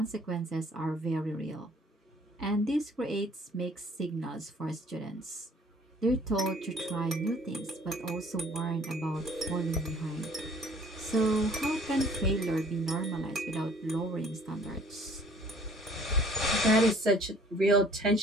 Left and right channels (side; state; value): both; normal; correlation 0.55